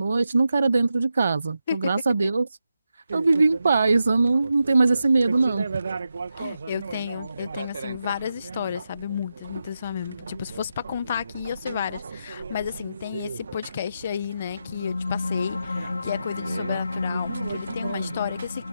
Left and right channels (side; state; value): both; inverted; correlation -0.87